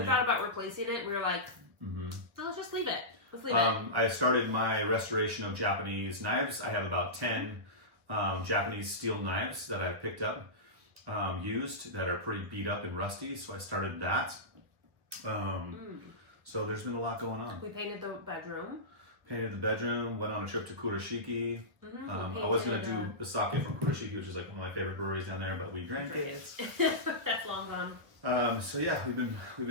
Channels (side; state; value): left; late; 1.5 ms